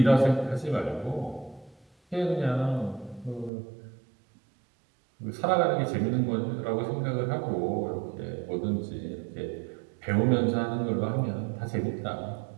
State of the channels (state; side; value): drops out; left; at 3.5 s